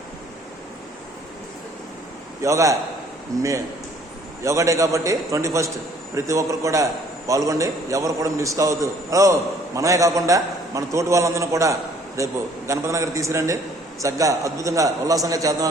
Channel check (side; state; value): both; normal; correlation 0.58